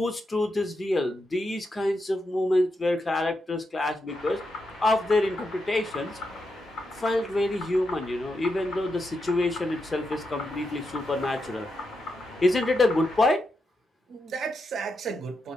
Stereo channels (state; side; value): normal; both; correlation 0.85